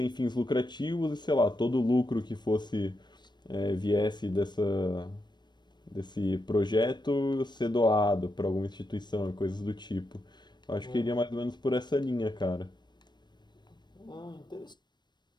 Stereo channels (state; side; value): late; right; 0.21 ms